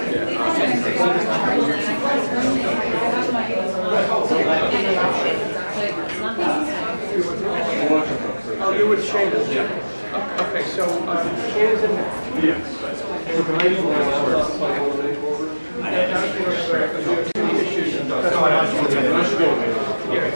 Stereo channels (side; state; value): both; inverted; correlation -1.00